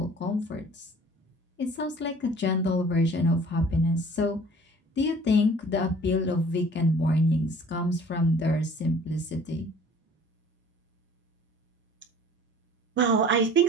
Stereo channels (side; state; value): both; normal; correlation 0.49